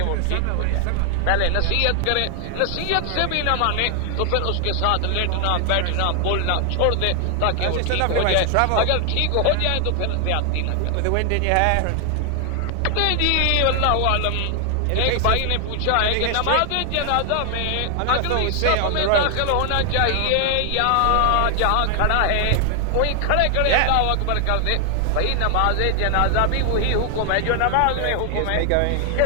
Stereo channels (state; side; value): different; both; correlation 0.00